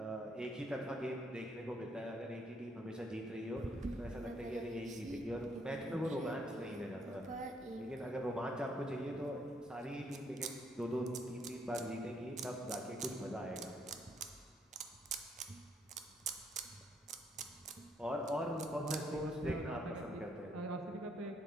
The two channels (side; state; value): both; normal; correlation 0.71